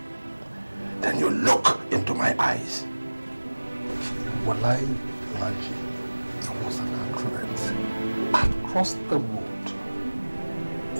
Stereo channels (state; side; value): inverted; both; correlation -1.00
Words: then you look into my eyes. Wallahi, Alhaji, it was an accident. I crossed the road.